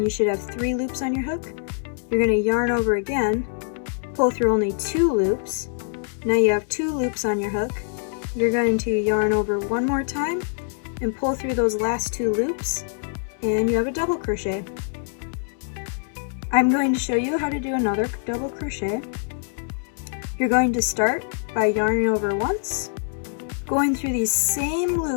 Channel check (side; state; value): right; silent; 63 dB below the other